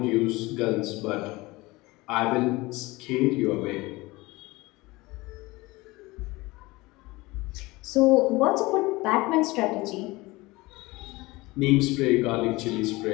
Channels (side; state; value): right; quieter; 21.8 dB